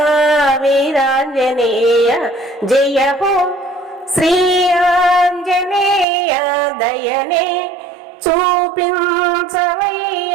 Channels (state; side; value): drops out; left; at 6.1 s